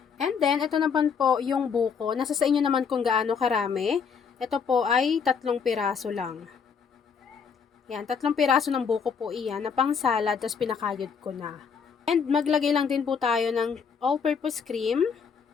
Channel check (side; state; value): right; quieter; 6.3 dB